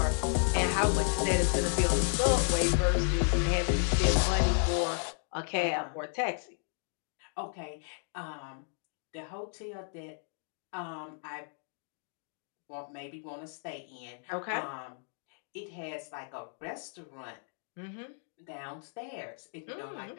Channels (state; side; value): silent; right; 56 dB below the other